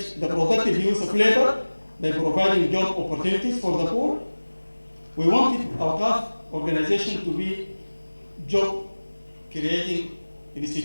the productive use of labor by providing job opportunities for the poor. We wanted our Awqaf organization to be job creating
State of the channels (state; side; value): inverted; both; correlation -1.00